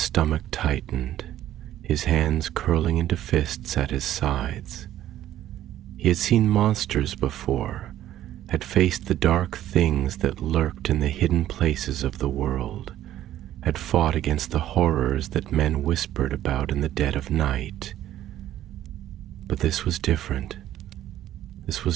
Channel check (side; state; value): left; quieter; 12.7 dB